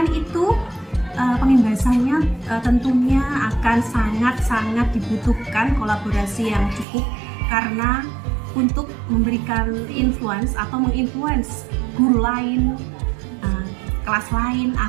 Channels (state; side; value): drops out; left; at 6.9 s